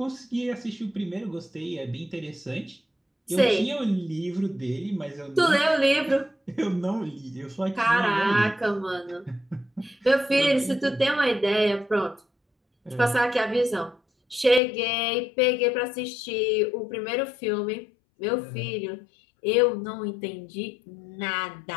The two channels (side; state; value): right; drops out; at 14.6 s